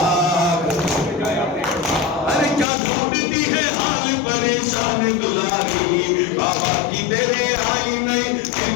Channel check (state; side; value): drops out; right; at 2.7 s